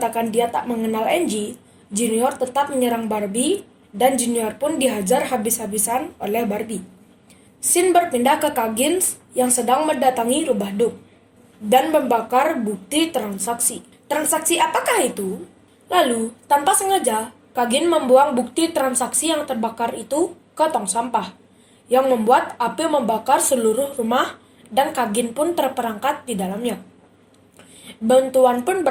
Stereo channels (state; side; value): identical; both; correlation 1.00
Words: dia tak mengenal Angie, Junior tetap menyerang Barbie dan Junior pun dihajar habis-habisan oleh Barbie. Sin berpindah ke Coggins yang sedang mendatangi rubah Duke dan membakar bukti transaksi. Transaksi apakah itu? Lalu, tanpa sengaja, Coggins membuang bukti transaksi yang terbakar itu ke tong sampah, yang membuat api membakar seluruh rumah dan Coggins pun terperangkap di dalamnya. Bantuan pun